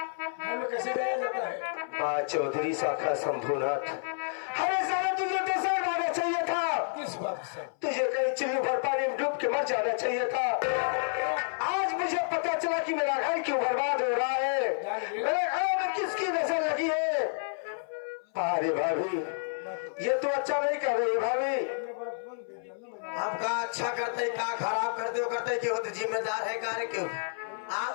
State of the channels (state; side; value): silent; right; 58 dB below the other